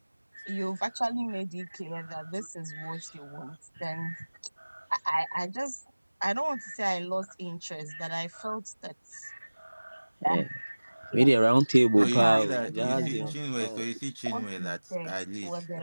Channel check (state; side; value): inverted; both; correlation -1.00